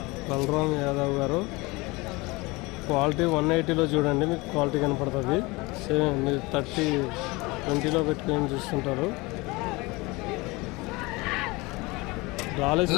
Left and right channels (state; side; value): quieter; right; 24.0 dB